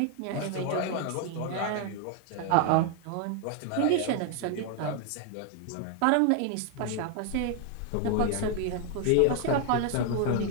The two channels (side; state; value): both; different; correlation 0.01